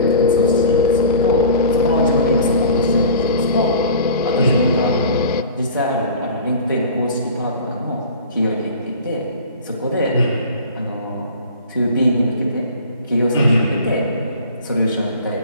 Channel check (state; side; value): inverted; both; correlation -0.41